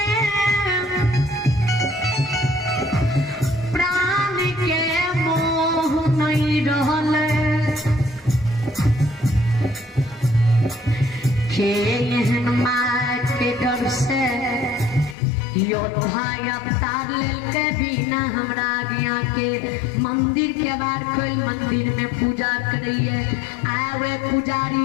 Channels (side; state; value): right; drops out; at 15.2 s